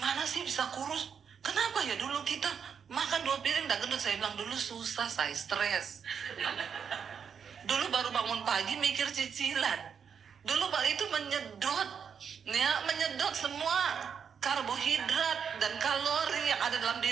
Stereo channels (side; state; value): left; quieter; 7.1 dB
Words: sih bisa kurus? Kenapa ya dulu kita makan 2 piring tak gendut? Saya bilang dulu susah, saya stres. Dulu baru bangun pagi mikir cicilan. Dulu itu menyedot semua karbohidrat dan kalori yang ada dalam